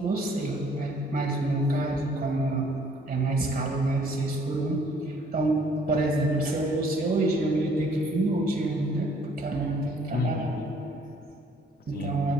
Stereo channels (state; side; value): normal; both; correlation 0.60